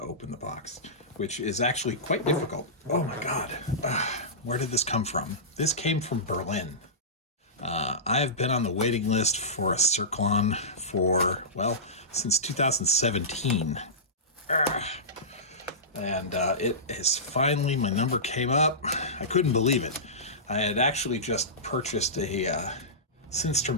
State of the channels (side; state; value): both; normal; correlation -0.19